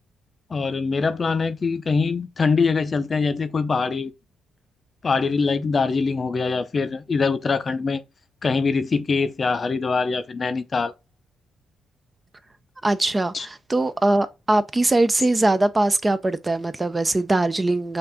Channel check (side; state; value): both; normal; correlation 0.91